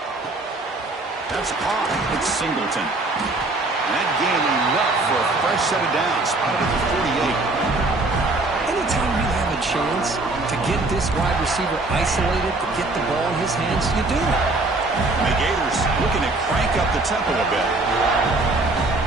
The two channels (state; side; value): quieter; left; 3.0 dB